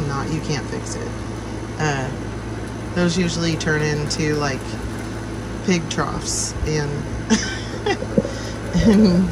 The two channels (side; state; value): both; identical; correlation 1.00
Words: not, you can't fix it. Those usually turn into like pig troughs and and